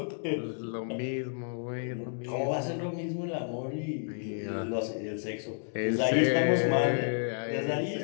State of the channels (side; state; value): right; silent; digital silence